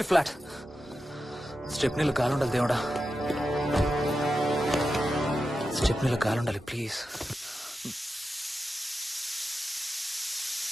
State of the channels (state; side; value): normal; both; correlation 0.90